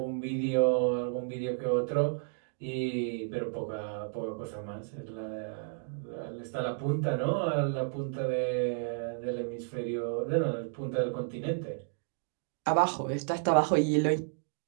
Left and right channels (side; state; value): left; silent; digital silence